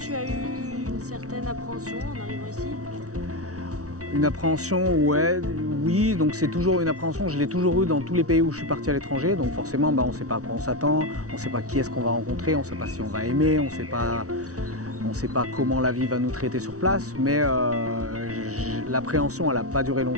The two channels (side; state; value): left; late; 0.66 ms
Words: as eu une certaine appréhension en arrivant ici? Une appréhension, oui, donc c'est toujours une appréhension, je l'ai toujours eu dans tous les pays où je suis parti à l'étranger, donc forcément on ne sait pas à quoi on s'attend, on ne sait pas qui est-ce qu'on va rencontrer, on ne sait pas si on va aimer, on ne sait pas comment la vie va nous traiter sur place, mais l'appréhension elle n'a pas duré